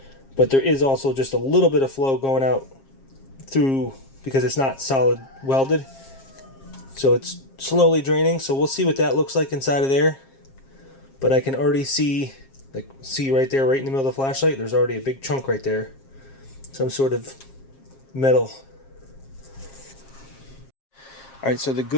But there is also just a little bit of flow going out through, because it's not solid welded, so it's slowly draining. So we'll see what that looks like inside of there. But I can already see, like, see right there, right in the middle of the flashlight, there's already a big chunk right there, some sort of metal. Alright, so the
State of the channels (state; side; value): late; right; 7.4 ms